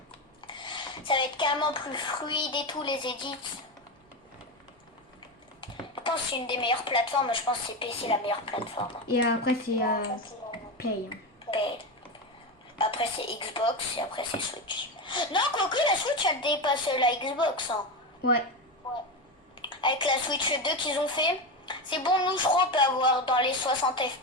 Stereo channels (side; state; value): both; normal; correlation 0.16